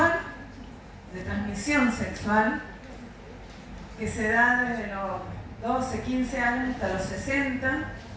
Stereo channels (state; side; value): identical; both; correlation 1.00